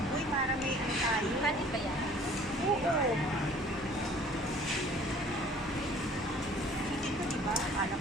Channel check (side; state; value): left; noise; hum, 18 dB below the sound